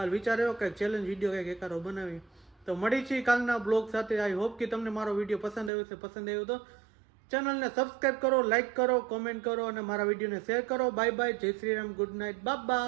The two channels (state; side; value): drops out; left; at 5.7 s